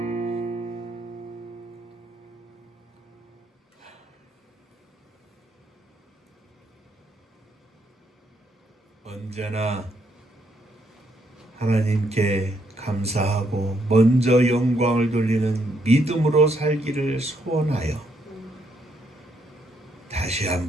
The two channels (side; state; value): both; normal; correlation 0.74